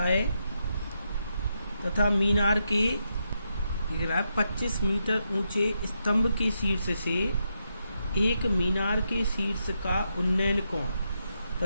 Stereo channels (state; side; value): inverted; both; correlation -0.83